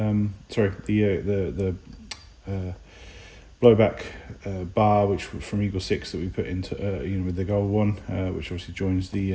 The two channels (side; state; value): both; identical; correlation 1.00